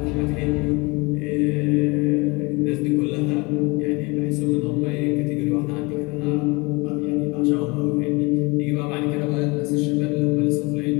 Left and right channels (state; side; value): quieter; right; 26.3 dB